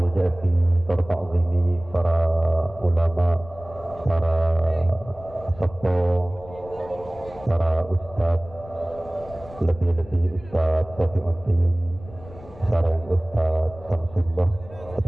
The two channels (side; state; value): left; noise; rumble, 19 dB below the sound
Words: jati tertakzimi para ulama, para sepo, para ustaz, lebih-lebih ustaz Safiuddin, sareng ustaz Samsullah,